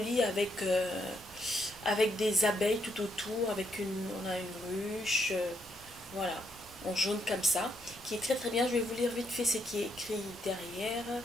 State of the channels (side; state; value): both; normal; correlation 0.76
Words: avec des abeilles tout autour, on a une ruche, voilà, en jaune comme ça, qui est très bien. Je vais vous lire vite fait ce qui est écrit derrière.